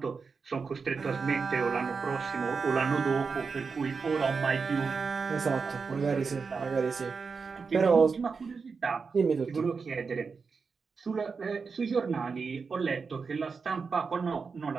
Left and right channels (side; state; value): left; quieter; 5.1 dB